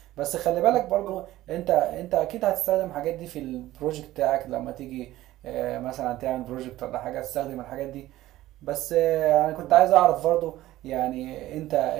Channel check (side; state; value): left; quieter; 15.6 dB